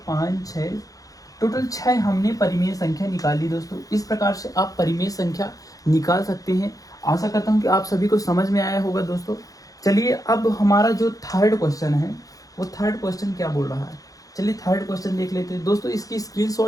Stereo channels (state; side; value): late; right; 0.17 ms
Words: 5 6 टोटल 6 हमने परिमेय संख्या निकाली दोस्तों। इस प्रकार से आप परिमेय संख्या निकाल सकते हैं। आशा करता हूँ कि आप सभी को समझ में आया होगा दोस्तों। चलिए अब हमारा जो थर्ड क्वेश्चन है वो थर्ड क्वेश्चन क्या बोल रहा है, चलिए थर्ड क्वेश्चन देख लेते हैं दोस्तों। इसकी